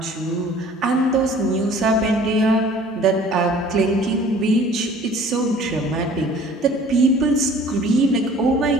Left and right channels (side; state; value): both; normal; correlation 0.50